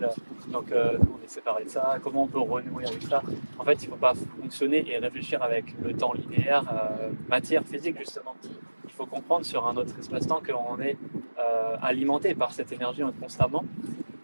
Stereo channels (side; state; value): both; inverted; correlation -1.00